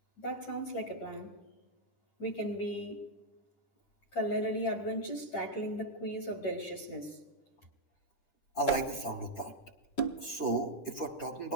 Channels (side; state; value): right; late; 10 ms